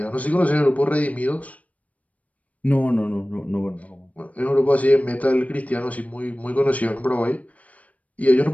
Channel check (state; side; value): late; right; 0.069 ms